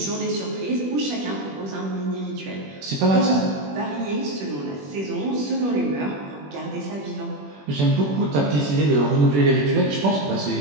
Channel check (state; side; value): late; left; 21 ms